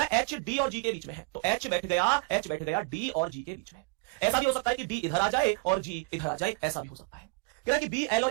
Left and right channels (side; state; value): left; quieter; 29.4 dB